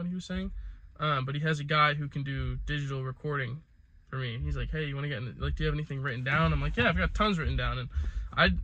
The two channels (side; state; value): both; identical; correlation 1.00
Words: he was saying. But he has a guy who can do digital recording for me. He's like, hey, you want to get in, like, do you have anything written down? I'm like, yeah, I've got tons written down, and